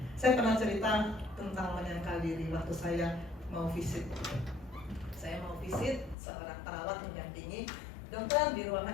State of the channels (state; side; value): drops out; right; at 6.2 s